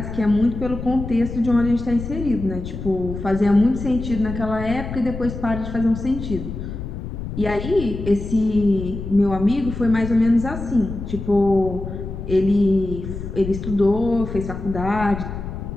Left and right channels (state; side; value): noise; left; rumble, 8 dB below the sound